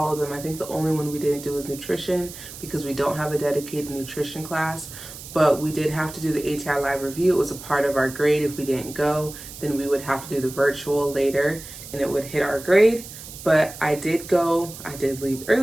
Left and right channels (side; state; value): right; noise; hiss, 14 dB below the sound